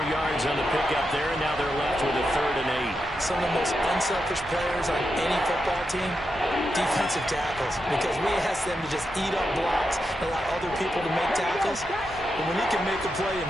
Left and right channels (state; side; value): normal; both; correlation 0.86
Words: yards on the pickup there, and now they're left with a 3rd and 8. Some of the most unselfish players on any football team, defensive tackles, because we ask them to just eat up blocks and allow other people to make tackles. But when he can make a play